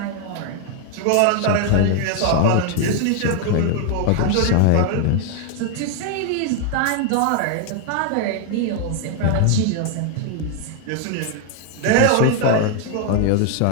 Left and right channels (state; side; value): different; both; correlation 0.00